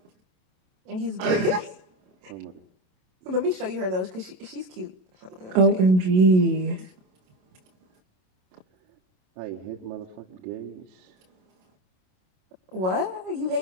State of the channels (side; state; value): left; late; 27 ms